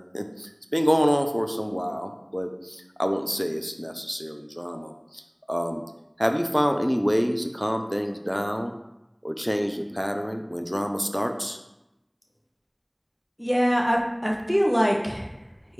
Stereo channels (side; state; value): both; identical; correlation 1.00